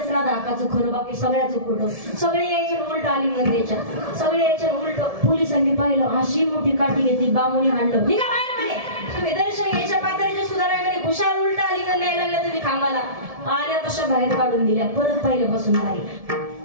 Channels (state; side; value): late; left; 1.7 ms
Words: राधा अक्काचं खरं, बाकी सगळ्याचं खोटं. सगळे यायचे उलट आलिंगन द्यायच्या. सगळे यायचे उलट. पोलिसांनी पाहिलं. अशी मोठी काठी घेतली. बामुनी हाणलं. निघा बाहेर म्हणे. तुम्ही दर्शन घ्यायच्या पातळीचे सुधाराय म्हणे. खुशाल उलट आलिंगन द्यायला लागल्या तुम्ही खांबाला. आल्या तशा बाहेर काढून दिल्या. परत पहिल्यापासून आली.